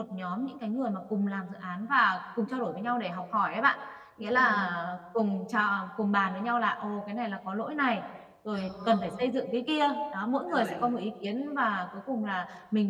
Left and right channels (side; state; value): both; identical; correlation 1.00